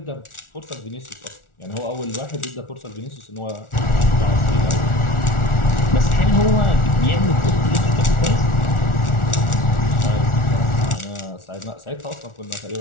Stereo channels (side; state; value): right; late; 1.4 ms